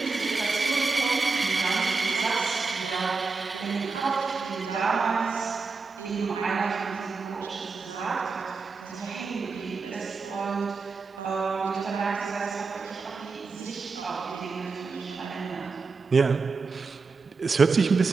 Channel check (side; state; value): left; quieter; 4.5 dB